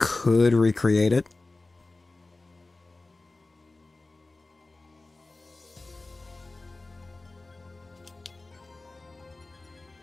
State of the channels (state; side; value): quieter; right; 3.2 dB